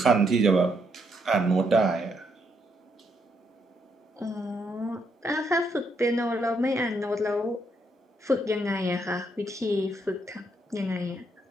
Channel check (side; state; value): both; normal; correlation 0.75